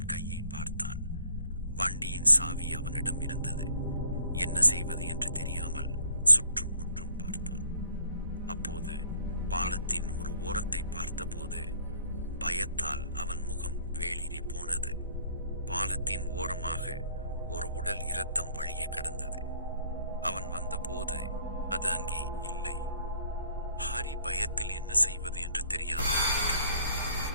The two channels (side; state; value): both; inverted; correlation -0.59